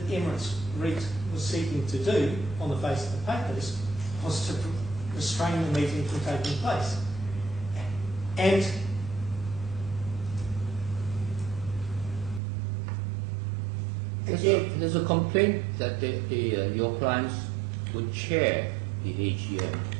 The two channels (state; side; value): drops out; left; at 12.4 s